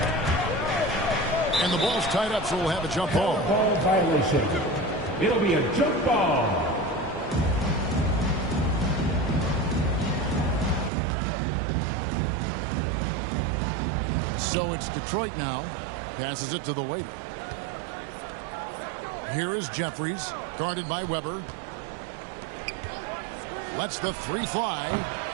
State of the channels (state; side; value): drops out; left; at 10.9 s